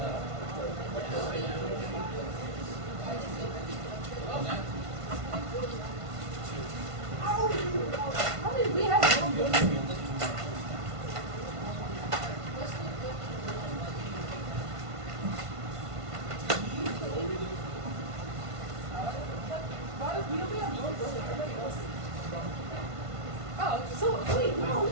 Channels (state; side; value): late; left; 1.5 ms